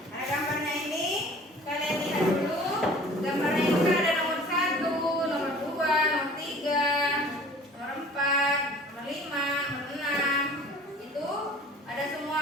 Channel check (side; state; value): both; normal; correlation 0.47